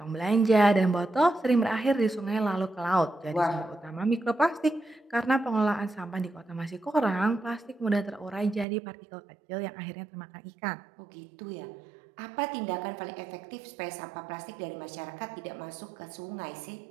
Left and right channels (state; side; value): drops out; left; at 8.7 s